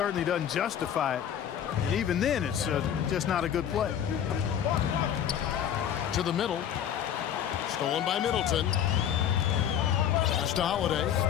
doesn't justify it. And even then, it's just not a good play. To the middle. Stolen by Middleton. Pass to Holiday.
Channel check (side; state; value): right; quieter; 9.4 dB